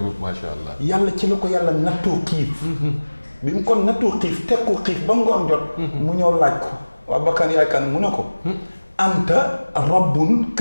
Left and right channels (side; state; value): both; inverted; correlation -1.00